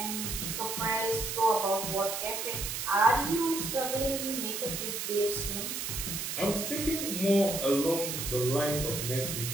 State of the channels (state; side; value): noise; right; hiss, 3 dB below the sound